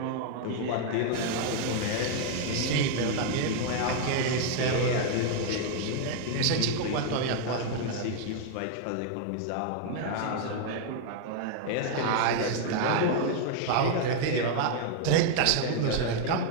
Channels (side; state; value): both; different; correlation 0.00